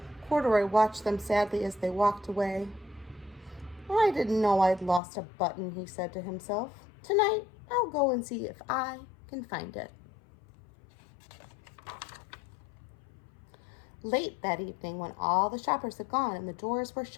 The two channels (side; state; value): right; drops out; at 5.0 s